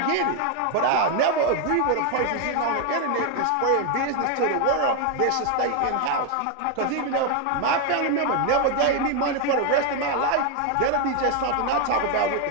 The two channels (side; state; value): both; different; correlation 0.01